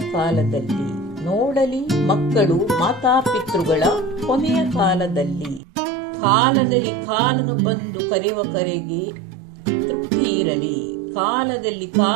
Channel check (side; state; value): left; drops out; at 5.6 s